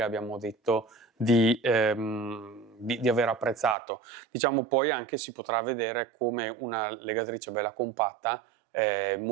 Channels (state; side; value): drops out; left; at 3.8 s